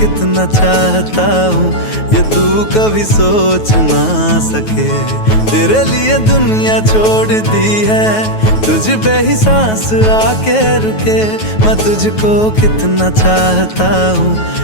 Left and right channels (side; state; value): right; late; 9.3 ms